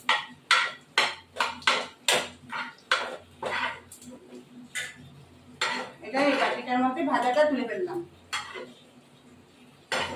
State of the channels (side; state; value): both; identical; correlation 1.00